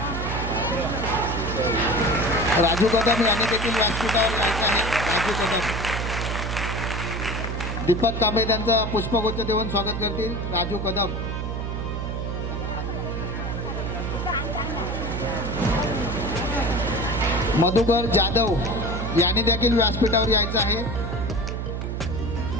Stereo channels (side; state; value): right; noise; hum, 3 dB below the sound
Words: राजू कदम यांनी देखील व्यासपीठावर यायचं आहे. राजू कदम. दीपक कांबळे त्यांचं पुष्पगुच्छ देऊन स्वागत करतील. राजू कदम. मधुकर जाधव यांनी देखील व्यासपीठावर यायचं आहे.